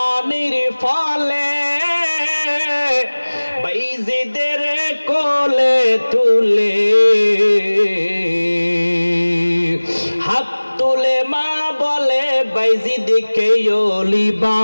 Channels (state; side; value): inverted; both; correlation -1.00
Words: ফলে বাইজিদের কোলে তুলে হাত তুলে মা বলে, বাইজিদকে ওলি